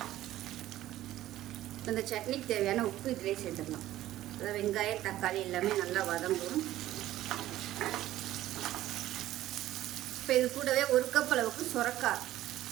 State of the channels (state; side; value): quieter; left; 14.3 dB